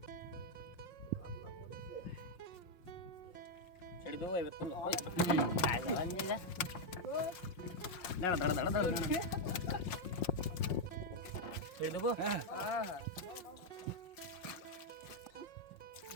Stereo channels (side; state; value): right; late; 5.6 ms